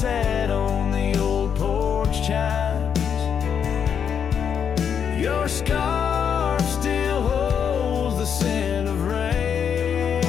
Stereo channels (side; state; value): right; quieter; 7.7 dB